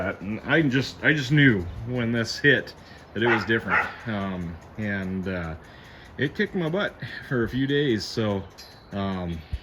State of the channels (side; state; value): both; identical; correlation 1.00